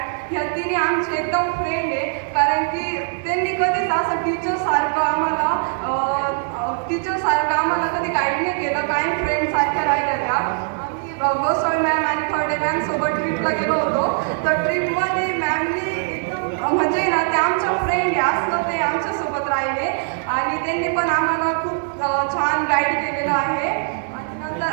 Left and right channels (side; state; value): left; silent; 65 dB below the other